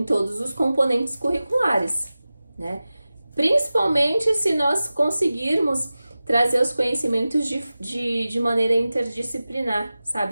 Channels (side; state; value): both; inverted; correlation -0.96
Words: todos os componentes curriculares, né? Principalmente se nós conseguirmos trazer os conhecimentos de maneira interdisciplinar, sabe?